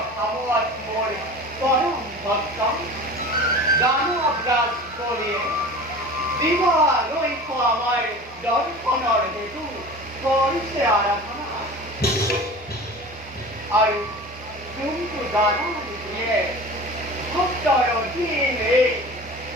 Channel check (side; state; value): both; normal; correlation 0.37